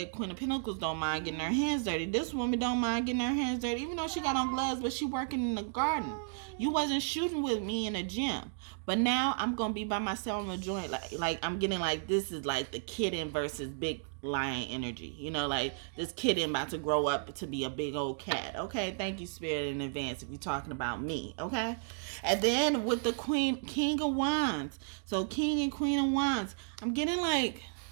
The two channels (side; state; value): left; silent; digital silence